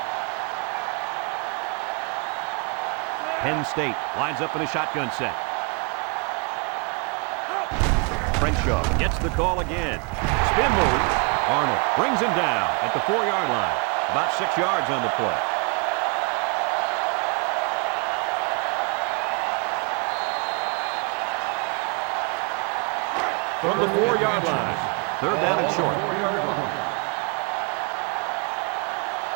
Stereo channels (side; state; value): left; quieter; 32.4 dB